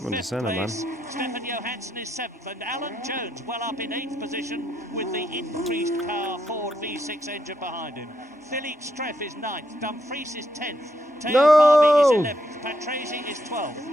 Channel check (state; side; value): normal; both; correlation 0.78